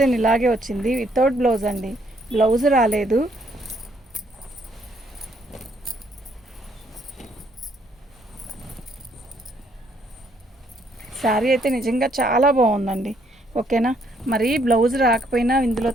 ఇలాగే వచ్చింది. వితౌట్ బ్లౌజ్ అండి. బ్లౌజ్ రాలేదు. శారీ అయితే నిజంగా చాలా బాగుందండి. ఓకేనా. మరి బ్లౌజ్ రాకపోయినా ఇందులో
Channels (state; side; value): normal; both; correlation 0.69